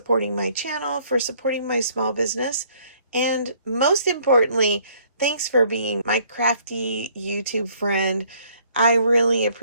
my channel, for supporting my small business, and most importantly, thanks for being my crafty YouTube friend. I really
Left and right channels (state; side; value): inverted; both; correlation -0.62